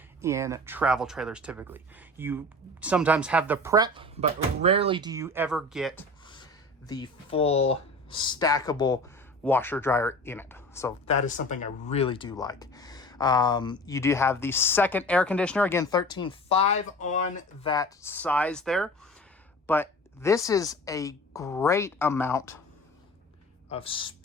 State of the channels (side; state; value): both; normal; correlation 0.38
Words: in travel trailers typically. You sometimes have the prep, but rarely do you ever get the full stackable washer dryer in it. So that is something I really do like. You do have the second air conditioner, again 13.5 on that size there, but this is a great amount of